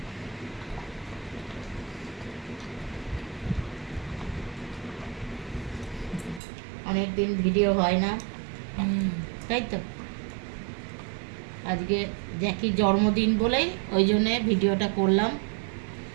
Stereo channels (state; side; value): drops out; left; at 6.4 s